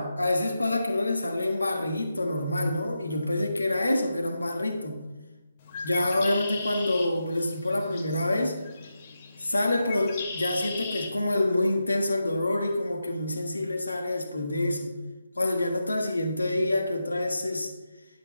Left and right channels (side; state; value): both; inverted; correlation -0.88